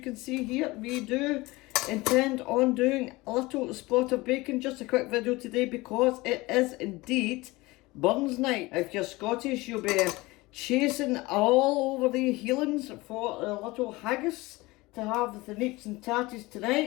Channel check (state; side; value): quieter; right; 21.5 dB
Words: see here, we do intend on doing a little spot of bacon. Just a quick video today because it is indeed Burns night. If you're Scottish, you'll be chasing all over the heelings for a little haggis to have with the neeps and tatties